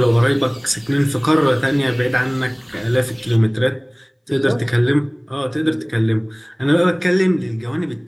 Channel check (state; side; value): identical; both; correlation 1.00